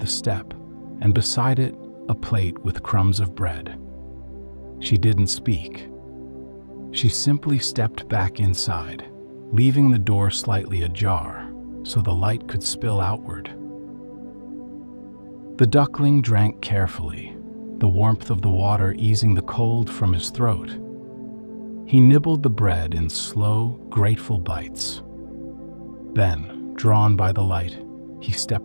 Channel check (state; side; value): inverted; both; correlation -1.00